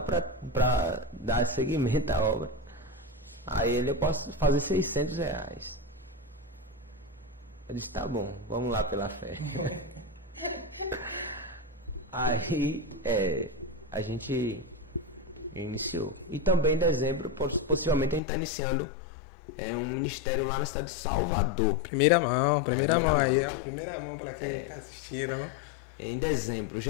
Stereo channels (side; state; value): right; drops out; at 18.2 s